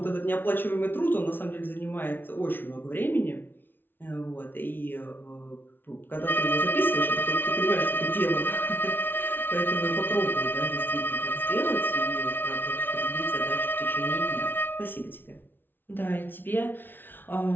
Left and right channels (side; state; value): right; late; 0.099 ms